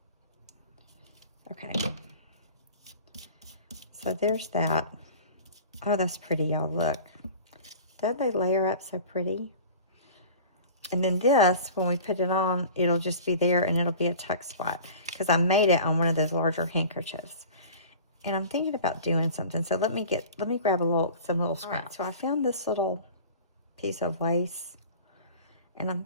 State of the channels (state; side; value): inverted; both; correlation -0.41